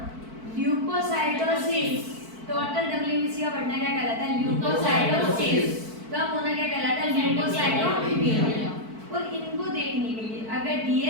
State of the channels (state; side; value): late; left; 4.5 ms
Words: ल्यूकोसाइटोसिस, टोटल डब्ल्यूबीसी का बढ़ना क्या कहलाता है? ल्यूकोसाइटोसिस। कम होना क्या कहलाता है? ल्यूकोसाइटोपीनिया। और इनको देखने के लिए अगर